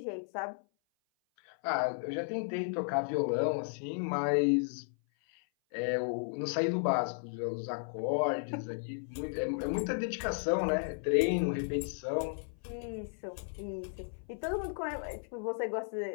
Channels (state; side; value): silent; right; 55 dB below the other